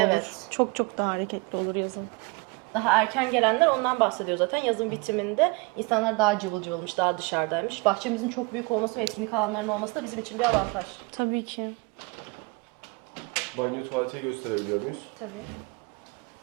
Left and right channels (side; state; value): left; quieter; 27.8 dB